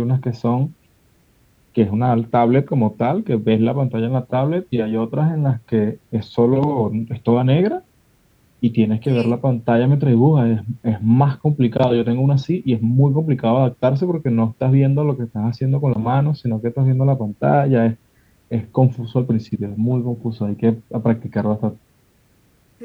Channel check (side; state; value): both; identical; correlation 1.00